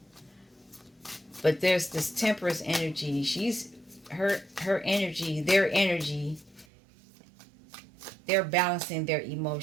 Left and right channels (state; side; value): drops out; left; at 6.7 s